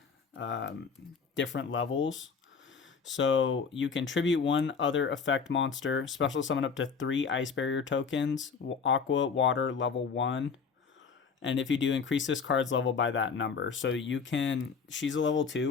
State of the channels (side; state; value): right; quieter; 5.7 dB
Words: different levels. So you can tribute one other effect monster, special summon up to 3 Ice Barrier tokens, Aqua, Water, level 1. And if you do, increase this card's level by that number. So you can, she's a level